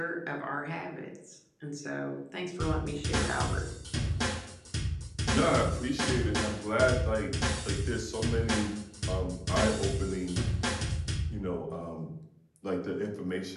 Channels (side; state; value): both; identical; correlation 1.00